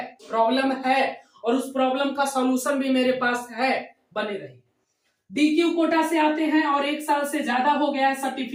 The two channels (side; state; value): both; identical; correlation 1.00